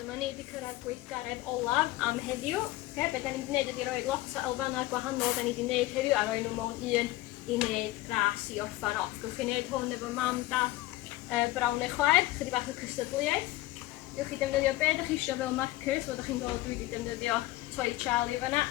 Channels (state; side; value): quieter; right; 17.8 dB